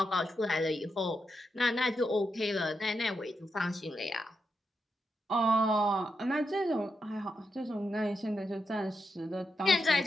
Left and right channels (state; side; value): normal; both; correlation 0.85